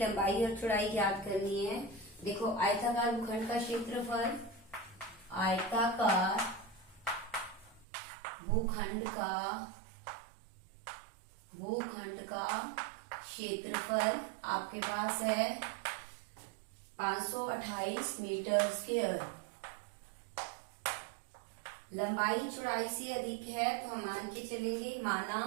और चौड़ाई ज्ञात करनी है। देखो आयताकार भूखंड का क्षेत्रफल, आयताकार भूखंड का क्षेत्रफल आपके पास है 528 मीटर स्क्वायर। लंबाई चौड़ाई से अधिक है तो हम मान के चलेंगे,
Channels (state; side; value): drops out; left; at 7.9 s